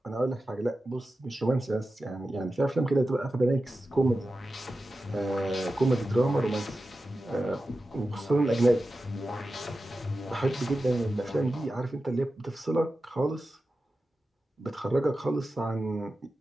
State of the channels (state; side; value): normal; both; correlation 0.93